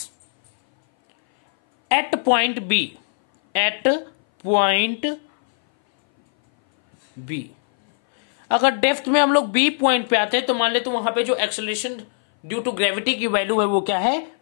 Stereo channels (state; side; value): silent; right; 60 dB below the other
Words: at point B, अगर depth में हम लोग B point पे आते हैं तो मान ले तो वहां पे जो एक्सेलरेशन ड्यू टू ग्रेविटी की वैल्यू है वो क्या है,